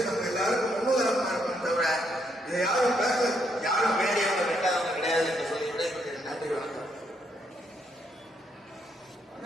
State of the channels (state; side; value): normal; both; correlation 0.75